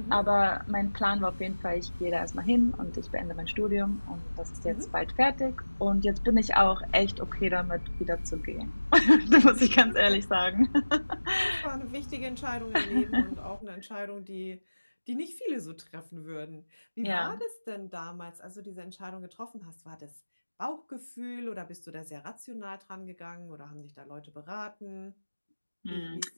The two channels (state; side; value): inverted; both; correlation -1.00